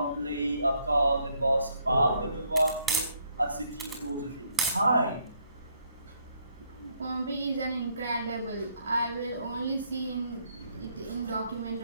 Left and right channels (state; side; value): inverted; both; correlation -0.70